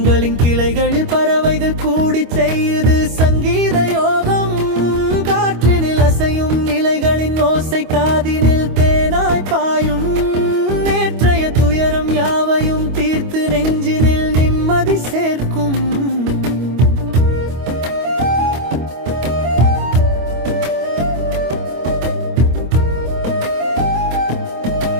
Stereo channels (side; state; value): left; late; 25 ms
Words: கிளைகளில் பறவைகள் கூடி செய்யுது சங்கீத யோகம். காற்றினில் அசையும் நிலைகளின் ஓசை காதினில் தேனாய் பாயும். நேற்றைய துயரம் யாவையும் தீர்த்து நெஞ்சினில் நிம்மதி சேர்க்கும்.